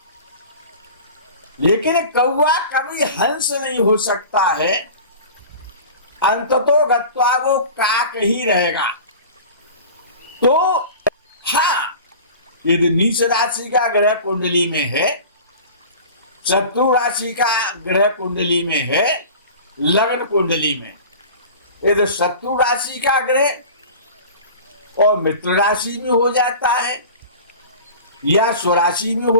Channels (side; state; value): both; inverted; correlation -0.38